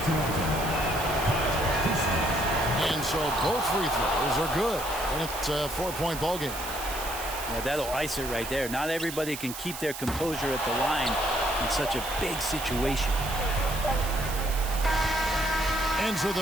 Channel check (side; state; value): right; noise; hiss, 9 dB below the sound